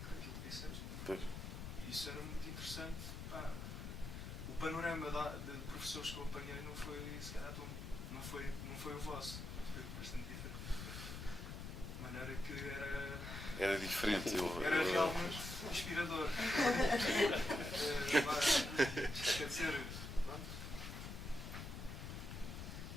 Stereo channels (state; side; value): noise; left; rumble, 7 dB below the sound